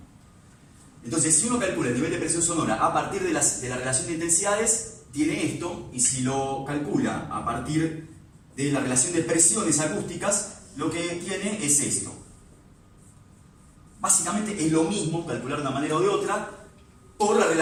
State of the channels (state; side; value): identical; both; correlation 1.00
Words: Entonces, si uno calcula el nivel de presión sonora a partir de la relación de intensidades, tiene esto, y si lo calcula a partir de la relación de presiones acústicas, lo que tiene es esto. Básicamente es lo mismo calcular de una manera o de otra por la